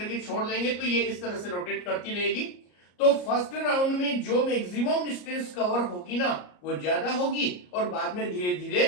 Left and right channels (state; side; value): late; right; 34 ms